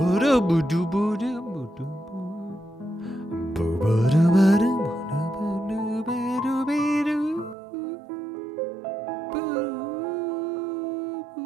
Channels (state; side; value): drops out; left; at 7.6 s